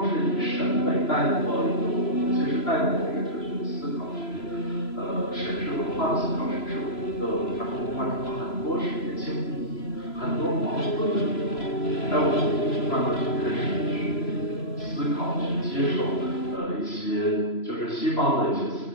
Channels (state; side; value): late; right; 3.0 ms